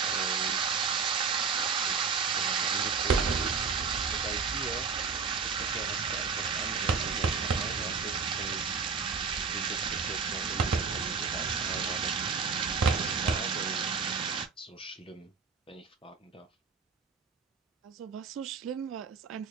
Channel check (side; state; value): left; quieter; 5.3 dB